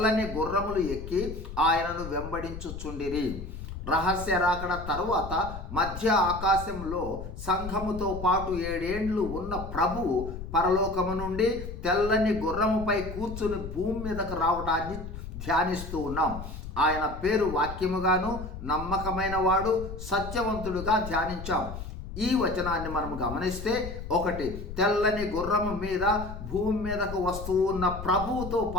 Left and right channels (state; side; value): noise; left; rumble, 9 dB below the sound